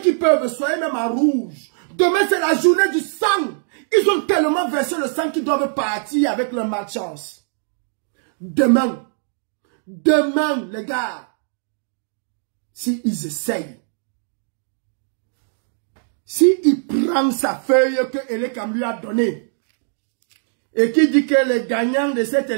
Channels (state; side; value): silent; left; digital silence